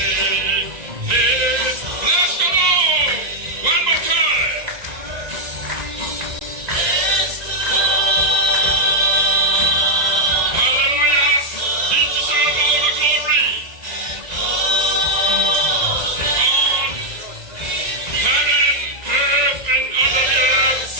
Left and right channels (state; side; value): late; left; 1.9 ms